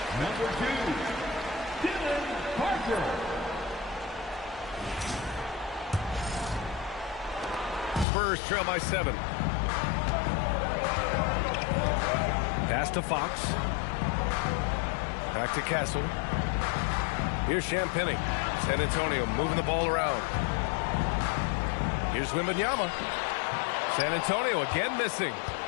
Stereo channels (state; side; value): drops out; right; at 8.1 s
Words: Number 2, Dylan Parker. Spurs trail by 7. Pass to Fox. Back to Castle. Here's Champagny. San Antonio moving the ball around. Here's Wembanyama. San Antonio again missing.